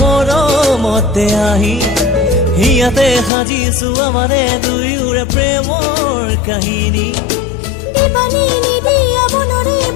মৰমতে আহি হিয়াতে সাজিছো আমাৰে দুয়োৰে প্ৰেমৰ কাহিনী দিবানে নিদিয়া মনৰে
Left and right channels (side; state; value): right; drops out; at 3.3 s